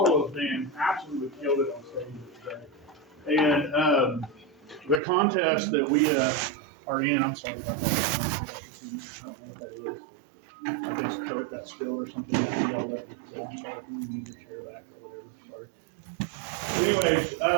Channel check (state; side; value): drops out; left; at 5.0 s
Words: band absolutely killed it on stage yesterday. And the contest that we are in, I'm sorry about that. I don't know what that is. I guess Coke got spilled or something. I think y'all let me say, I'm sorry if you need to share back or whatever. Sorry. Anyways,